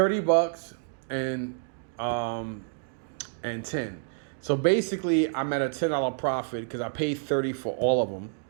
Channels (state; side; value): silent; left; digital silence